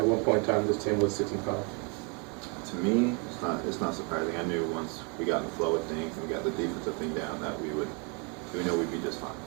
one point in time this team was 6-5? To me, it's not surprising. I knew once we got in the flow of things and we got the defensive thing down that we know we'd be just fine.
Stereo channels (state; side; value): quieter; left; 32.8 dB